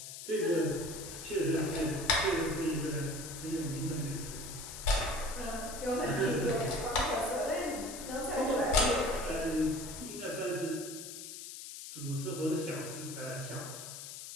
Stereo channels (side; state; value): left; noise; hiss, 10 dB below the sound